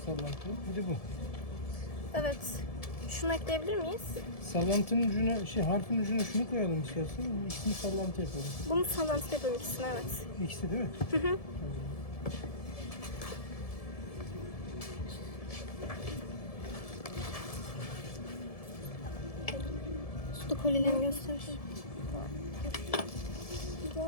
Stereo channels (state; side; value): late; right; 1.7 ms